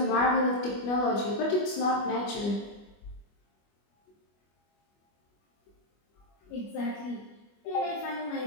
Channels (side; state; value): right; late; 25 ms